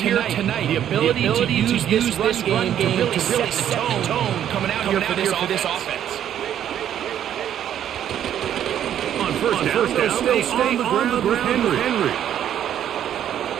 tonight. The ability to use this run game to really set the tone coming out here for this offense. On first down, stay on the ground with Henry.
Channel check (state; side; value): quieter; left; 10.3 dB